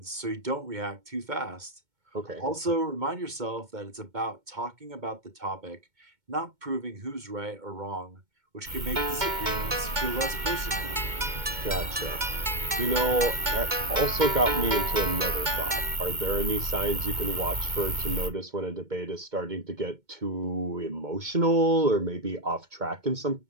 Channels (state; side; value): late; left; 2.2 ms